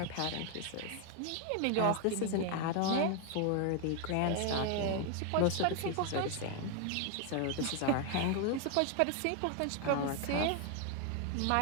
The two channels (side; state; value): both; different; correlation 0.01